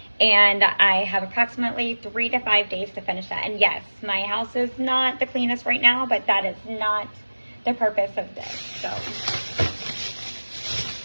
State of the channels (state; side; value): inverted; both; correlation -1.00